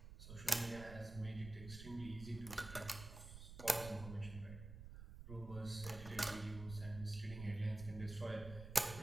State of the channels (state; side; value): noise; right; rumble, 11 dB below the sound